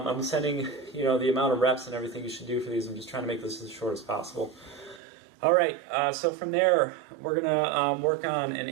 sending, the amount of reps and everything you should do for these. I'm just trying to make this as short as possible. All right, so from there, we're going to work on an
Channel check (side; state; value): left; drops out; at 5.0 s